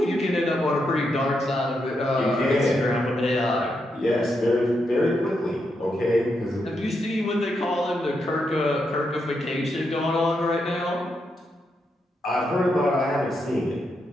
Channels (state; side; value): normal; both; correlation 0.82